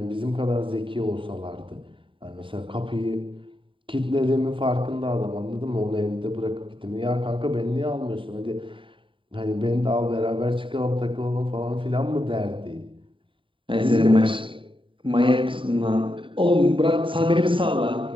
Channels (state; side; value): late; left; 0.25 ms